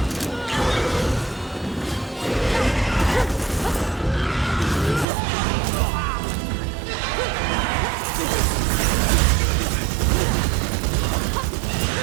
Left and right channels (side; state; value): left; drops out; at 5.1 s